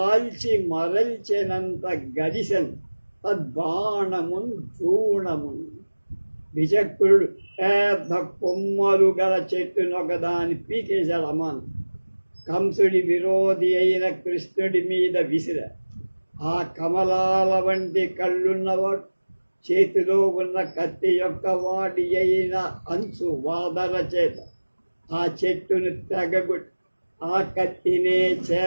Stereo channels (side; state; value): both; inverted; correlation -1.00